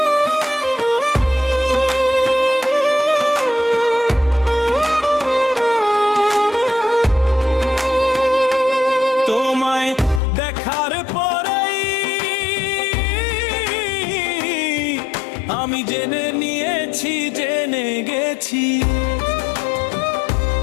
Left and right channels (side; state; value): right; drops out; at 10.2 s